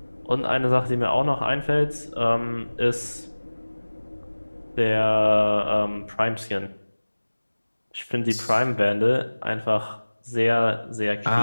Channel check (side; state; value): both; inverted; correlation -1.00